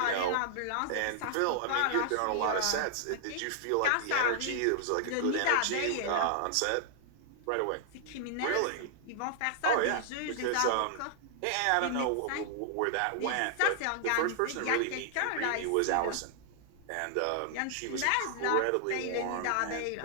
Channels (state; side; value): different; both; correlation -0.01